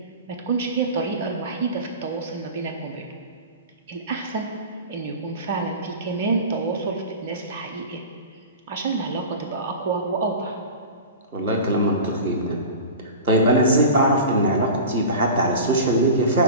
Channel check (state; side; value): inverted; both; correlation -0.32